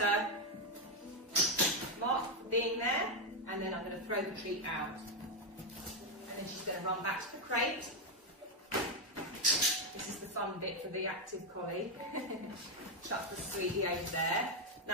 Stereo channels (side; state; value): both; normal; correlation 0.03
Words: mark being there, and then I'm going to throw the treat out. And then she's going to run back to the crate. This is the fun bit for the active collie. Chuck the sweetie over there.